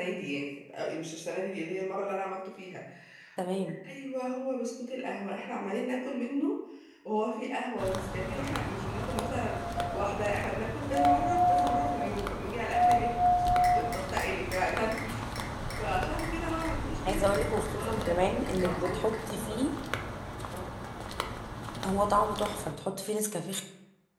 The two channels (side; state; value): both; identical; correlation 1.00